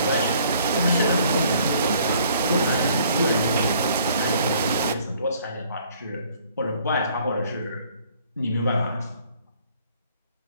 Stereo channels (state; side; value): inverted; both; correlation -0.60